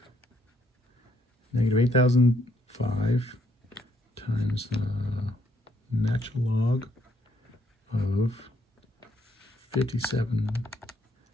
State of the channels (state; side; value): normal; both; correlation 0.71